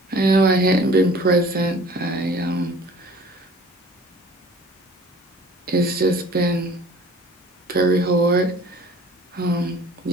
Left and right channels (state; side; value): normal; both; correlation 0.48